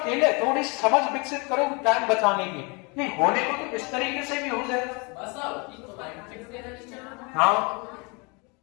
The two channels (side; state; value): right; quieter; 30.4 dB